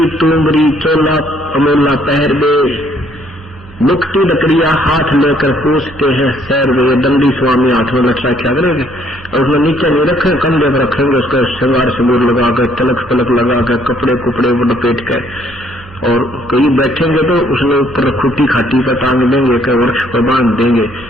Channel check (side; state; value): both; normal; correlation 0.65